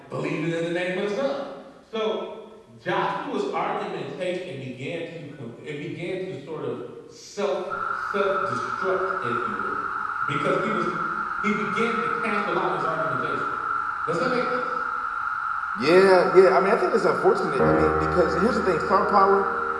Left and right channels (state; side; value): identical; both; correlation 1.00